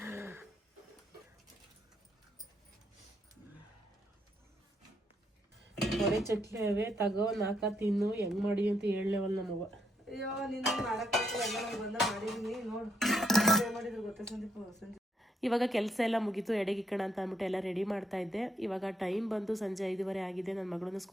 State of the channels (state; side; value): normal; both; correlation 0.75